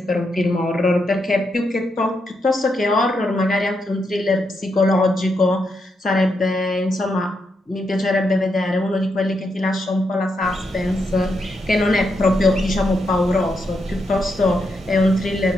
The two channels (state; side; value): normal; both; correlation 0.82